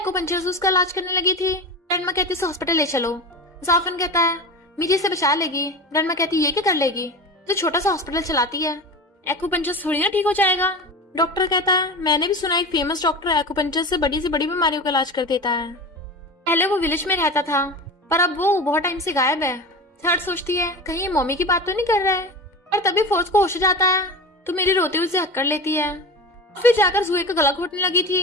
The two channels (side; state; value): both; normal; correlation 0.29